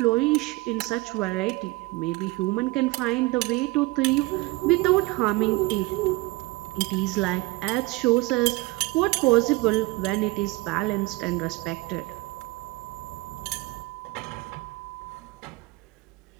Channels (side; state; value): left; quieter; 22.8 dB